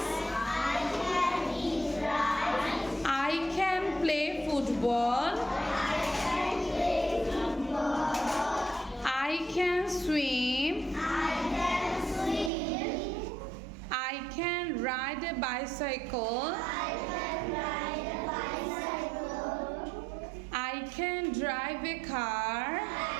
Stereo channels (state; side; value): drops out; left; at 12.5 s